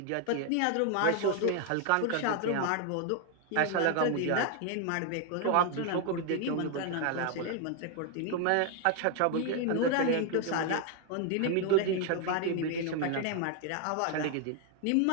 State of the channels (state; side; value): different; both; correlation 0.01